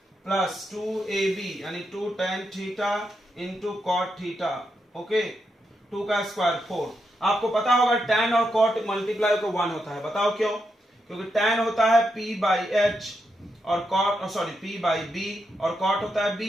प्लस 2ab यानी 2 tan theta into cot theta. Okay, 2 का स्क्वायर 4। आपको पता होगा tan और cot मल्टीप्लाई को 1 होता है, बताओ क्यों? क्योंकि tan होता है p बाई h और cot sorry p by b और cot होता है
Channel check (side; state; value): both; normal; correlation 0.83